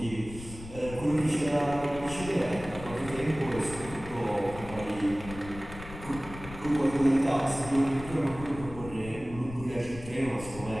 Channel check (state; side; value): noise; left; rumble, 13 dB below the sound